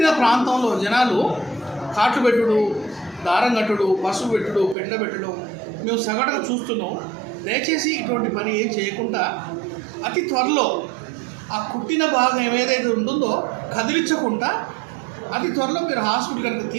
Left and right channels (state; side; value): drops out; left; at 4.8 s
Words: ప్రాంతంలో జనాలు కాట్లు పెట్టుడు, దారం కట్టుడు, పసుపు పెట్టుడు, పెండ పెట్టడం మేము సగటుగా చూస్తున్నాం. దయచేసి ఇటువంటి పని ఏం చేయకుండా అతి త్వరలో ఆ కుట్టిన భాగం ఏదైతే ఉంటుందో కదిలించకుండా అతి త్వరలో మీరు హాస్పిటల్ కనుక